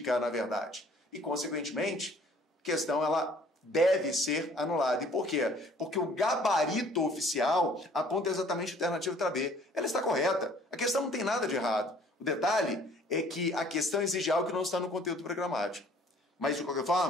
na verdade. E, consequentemente, a questão ela deve ser anulada. E por quê? Porque o gabarito oficial aponta exatamente a alternativa letra B. Ela está correta. A questão não tem nada de errado. O detalhe é que a questão exige algo que não está no conteúdo programático. Mas, de qualquer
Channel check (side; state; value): both; normal; correlation 0.55